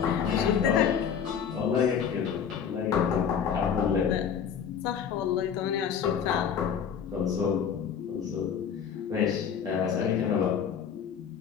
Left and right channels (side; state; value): right; quieter; 7.6 dB